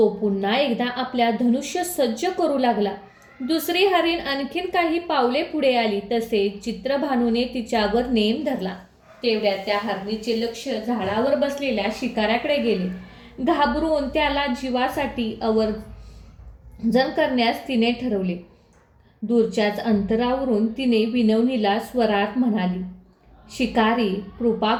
पुन्हा एकदा आपल्या धनुष्य सज्ज करू लागला. दुसरी हरीण आणखीन काही पावले पुढे आली तसे चित्रभानूने तिच्यावर नेम धरला. तेवढ्यात त्या हरणीचे लक्ष झाडावर बसलेल्या शिकाऱ्याकडे गेले. घाबरून त्याला जीवासाठी आवर्जन करण्यास तिने ठरवले. दूरच्याच अंतरावरून तिने विनवणीला स्वरात म्हणाली, शिकारी, कृपा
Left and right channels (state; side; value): identical; both; correlation 1.00